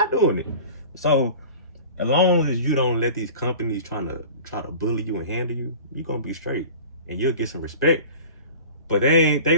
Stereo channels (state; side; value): inverted; both; correlation -0.40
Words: doing it. So as long as you don't let these companies try to bully you and handle you, you're gonna be straight and you'll get some respect. But they ain't